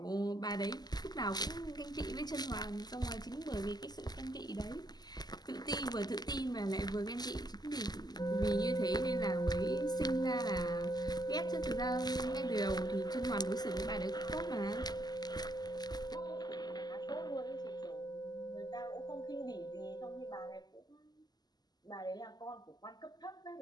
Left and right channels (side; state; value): right; late; 0.20 ms